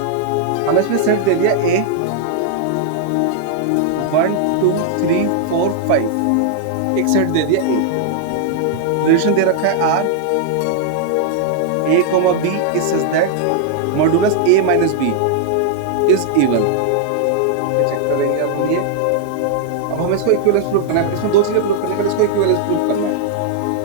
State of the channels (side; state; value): both; different; correlation -0.01